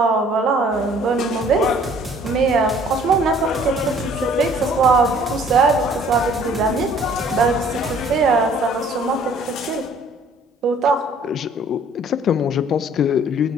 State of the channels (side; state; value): both; normal; correlation 0.56